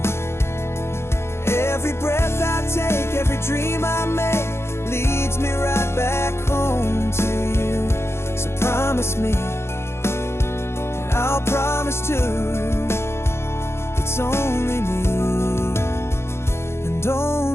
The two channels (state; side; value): late; right; 0.12 ms